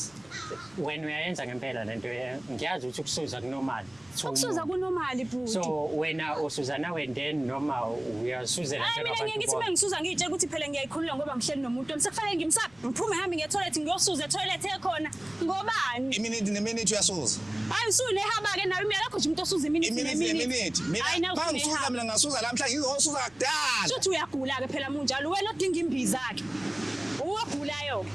Wena uyayenza ngempela lento ngiyazi ukuthi ukusuza kunormal. Ukusuza kunormali bhuti So wena usuza nawe then noma uyasuzela Hayi mina ngeke ngithi mengisuza ngitshela ukuthi phela ngiyayikhulula ngoba ngihleli nomuntu sekufanele ngimsaphe ngiphume ngihambe ngiye toilet ngiyosuza toilet ekhona ngobani iminithi neminithi uyasuza hayi usuyinehaba ke nawe imiyalakho nje umuntu osuza iminithi iminithi hayi mina nawe ngisuza usuyinehaba mina ngasuza lamhla ngizosuza kudala Shuthi uyagula ke phela munjalo wena odinga imbiza ke uwagulayo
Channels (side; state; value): left; noise; rumble, 29 dB below the sound